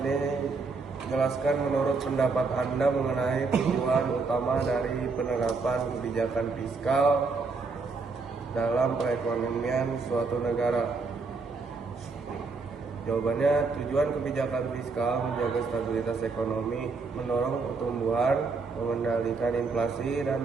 jelaskan menurut pendapat Anda mengenai tujuan utama dari penerapan kebijakan fiskal dalam perekonomian suatu negara. Jawabannya, tujuan kebijakan fiskal menjaga stabilitas ekonomi, mendorong pertumbuhan, mengendalikan inflasi dan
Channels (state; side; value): quieter; left; 4.3 dB